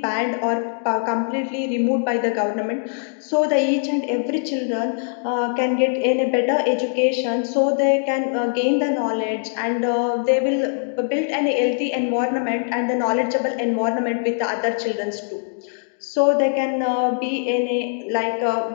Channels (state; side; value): silent; right; digital silence